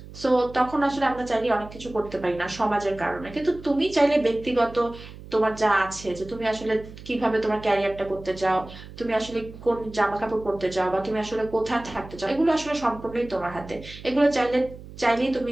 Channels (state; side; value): noise; right; hum, 16 dB below the sound